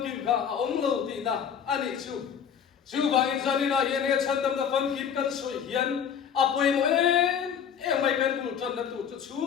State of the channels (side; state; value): right; quieter; 8.0 dB